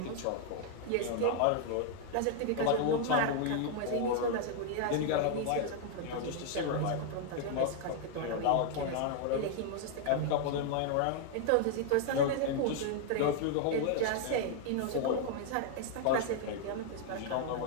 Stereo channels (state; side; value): different; both; correlation 0.00